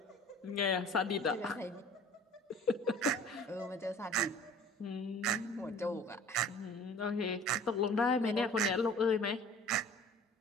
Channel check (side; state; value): both; normal; correlation 0.46